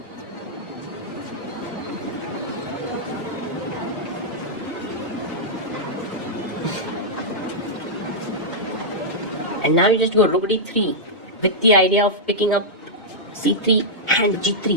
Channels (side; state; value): both; normal; correlation -0.10